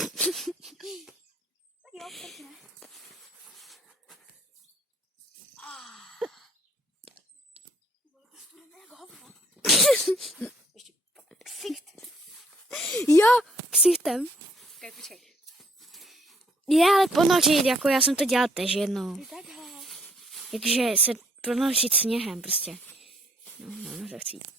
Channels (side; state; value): both; normal; correlation 0.64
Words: jo, pěkně. Ještě ksicht. Jo, ksichtem. Okay, počkej. Je, ale ponořit, jako já jsem to dělal tež jednou. Ty takhle. Takže se ponořit sněhem prostě. No, to chci.